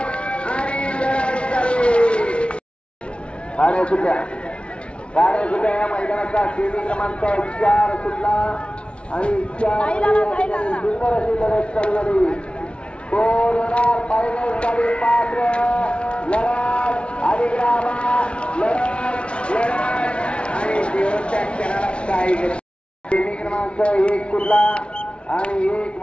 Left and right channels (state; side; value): late; right; 0.059 ms